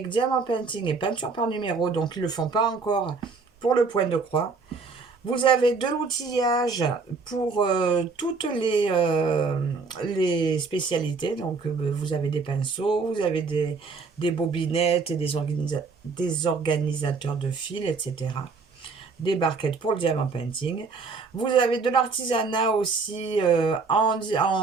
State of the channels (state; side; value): quieter; left; 4.6 dB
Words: diamant painting et peinture par numéro, donc ils ne le font pas encore pour le point de croix. Vous avez de l'outillage pour toutes les spécialités. Donc vous avez des pinceaux, vous avez des bobinettes, et des organisateurs de fils, etc. Des barquettes pour le diamant painting. Vous avez de l'artisanat aussi